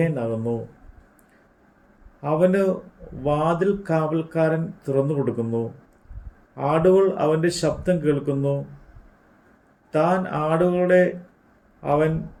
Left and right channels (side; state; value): both; identical; correlation 1.00